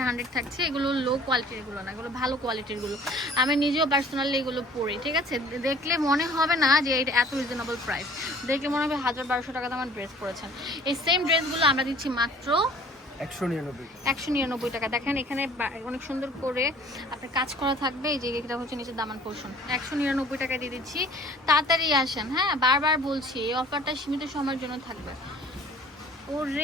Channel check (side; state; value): both; normal; correlation 0.51